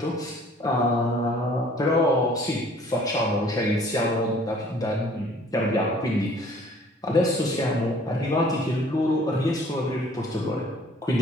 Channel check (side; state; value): both; normal; correlation 0.55